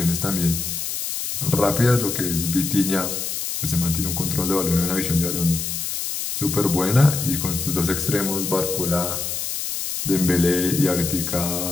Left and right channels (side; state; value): left; noise; hiss, 3 dB below the sound